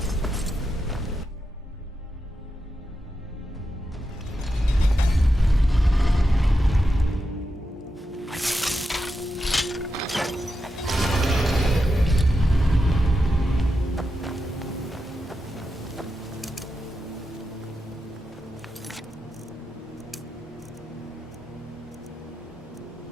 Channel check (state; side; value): normal; both; correlation 0.88